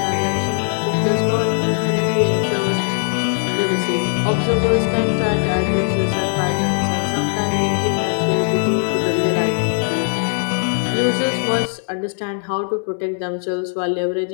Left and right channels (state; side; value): silent; right; digital silence